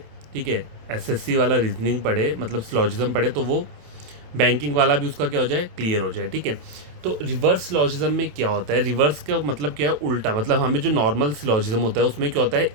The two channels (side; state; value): left; late; 27 ms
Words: ठीक है, एसएससी वाला रीजनिंग पढ़े, मतलब सिलॉजिज्म पढ़े, तो वो बैंकिंग वाला भी उसका क्या हो जाए, क्लियर हो जाए। ठीक है, तो रिवर्स सिलॉजिज्म में क्या होता है, रिवर्स का मतलब क्या है, उल्टा। मतलब हमें जो नॉर्मल सिलॉजिज्म होता है उसमें क्या होता है,